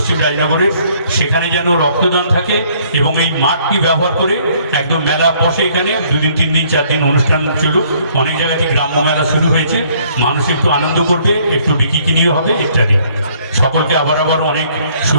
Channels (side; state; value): both; inverted; correlation -0.63